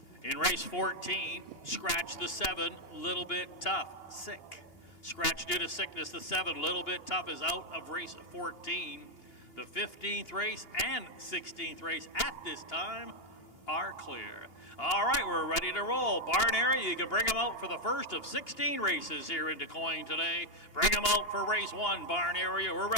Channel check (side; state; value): right; late; 2.8 ms